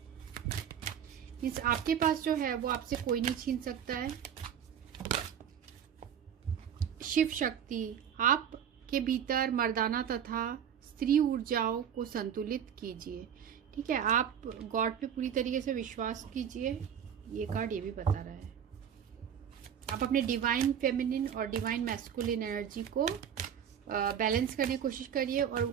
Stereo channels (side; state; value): left; quieter; 8.6 dB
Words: इस आपके पास जो है वो आपसे कोई नहीं छीन सकता है। शिव शक्ति, आपके भीतर मर्दाना तथा स्त्री ऊर्जाओं को संतुलित कीजिए। ठीक है, आप गॉड पे पूरी तरीके से विश्वास कीजिए। ये कार्ड ये भी बता रहा है आप अपने डिवाइन फेमिनिन और डिवाइन मैस्कुलिन एनर्जी को बैलेंस करने की कोशिश करिए, और